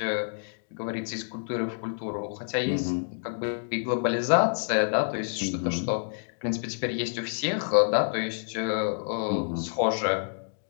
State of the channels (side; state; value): right; silent; digital silence